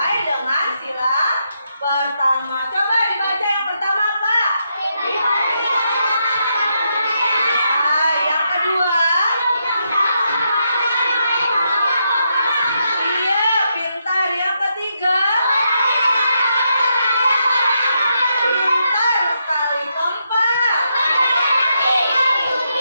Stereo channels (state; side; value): inverted; both; correlation -0.81